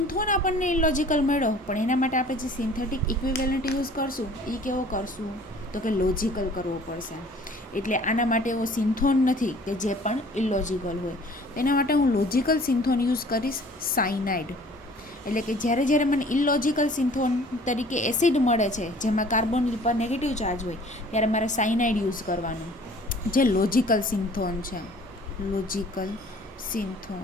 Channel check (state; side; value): normal; both; correlation 0.51